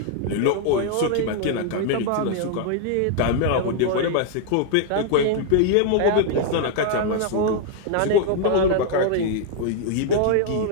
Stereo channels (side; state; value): both; different; correlation 0.00